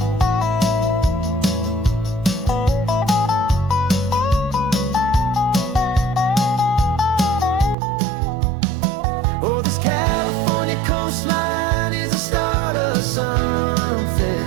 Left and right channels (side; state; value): left; drops out; at 7.8 s